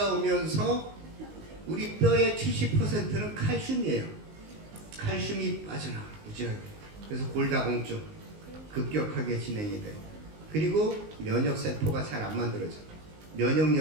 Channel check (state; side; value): late; left; 19 ms